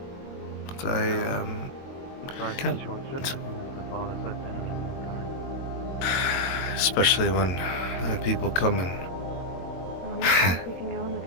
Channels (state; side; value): late; right; 22 ms